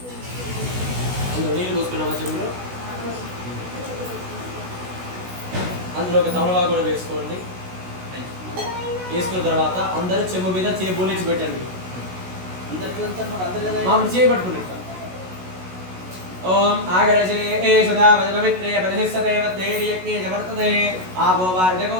అందులో నీళ్ళు పోసుకున్నామా చెంబులో. అందులో ఒక తమలపాకు కూడా వేసుకోండి. వేసుకున్న తర్వాత అందరూ చెంబు మీద బోలించి పెట్టండి. అందరికీ అందరు మామూలు చేయబట్టుకుని ఓం ఆగరజే ఏ సదా పవిత్రే పరిశిష్టతే వద్దేర్యజ్ఞే జవర్తతే ఆపో వార్ధకో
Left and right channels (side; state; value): left; late; 16 ms